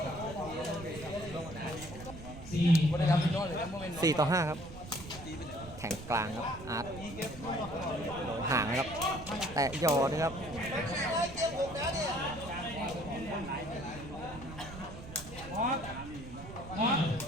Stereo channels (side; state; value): right; noise; rumble, 13 dB below the sound